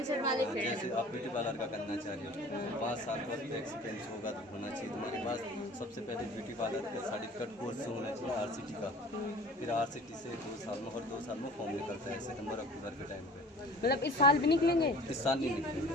वाले फील्ड। जैसे आप ब्यूटी पार्लर का करना चाह रहे हो, 5 साल का एक्सपीरियंस होगा तो होना चाहिए तुम्हारे पास। सबसे पहले ब्यूटी पार्लर का सर्टिफिकेट कोर्स होना चाहिए आरसीटी का। फिर आरसीटी से 2 साल में, और 2 साल में फॉर्म निकलता है सितंबर अक्टूबर के टाइम पे। मतलब इस साल भी निकलेंगे? इस साल नहीं निकलेंगे,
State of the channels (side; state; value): both; normal; correlation 0.44